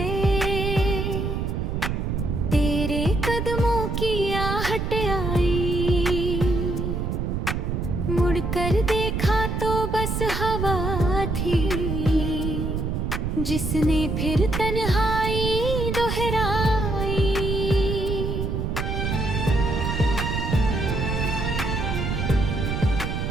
तेरे कदमों की आहट आई, मुड़कर देखा तो बस हवा थी जिसने फिर तन्हाई दोहराई।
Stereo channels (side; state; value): right; noise; rumble, 1 dB below the sound